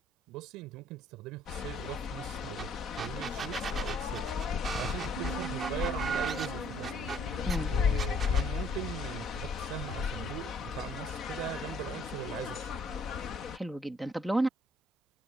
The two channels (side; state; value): both; normal; correlation 0.62